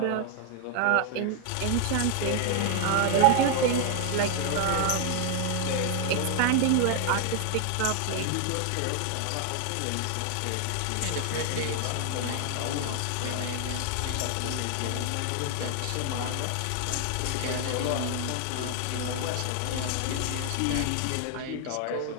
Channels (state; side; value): different; both; correlation 0.00